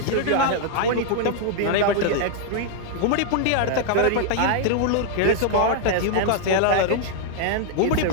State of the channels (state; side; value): different; both; correlation 0.00